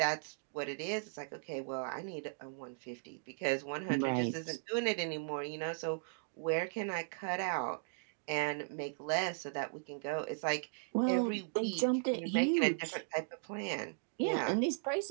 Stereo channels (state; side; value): silent; left; digital silence